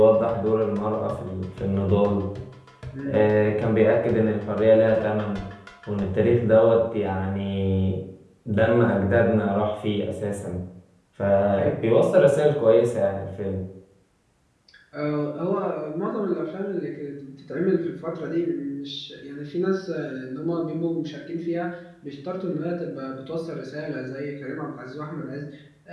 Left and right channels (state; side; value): identical; both; correlation 1.00